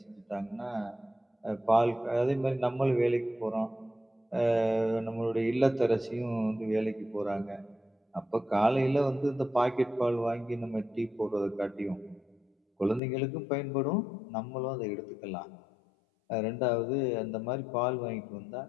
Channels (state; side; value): drops out; right; at 13.0 s